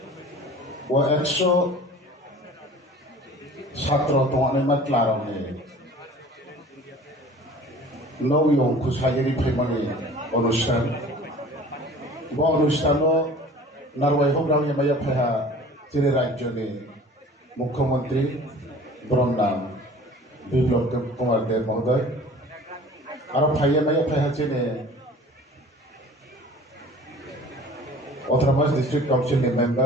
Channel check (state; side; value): normal; both; correlation 0.46